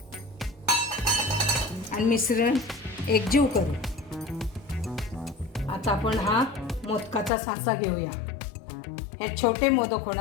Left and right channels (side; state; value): right; drops out; at 7.3 s